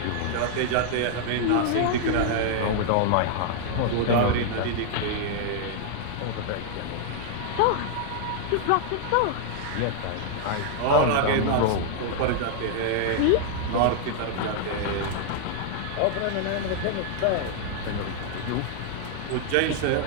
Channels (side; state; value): both; different; correlation -0.01